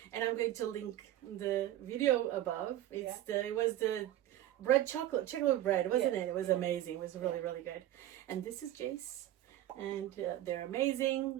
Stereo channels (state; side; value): quieter; left; 13.4 dB